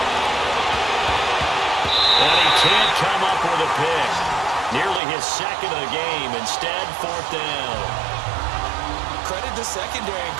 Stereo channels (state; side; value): drops out; left; at 5.0 s